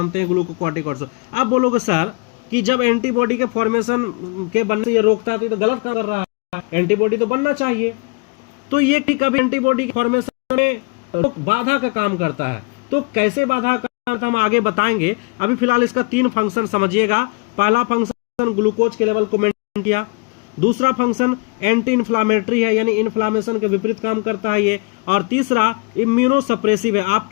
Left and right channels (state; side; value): quieter; right; 31.0 dB